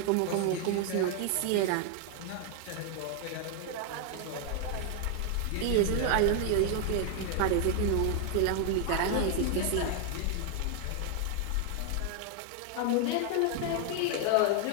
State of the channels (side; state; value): both; different; correlation 0.00